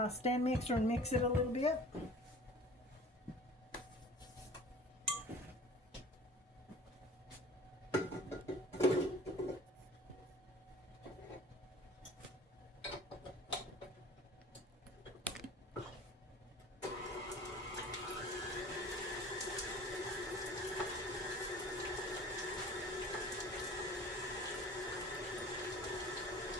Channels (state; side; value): normal; both; correlation 0.44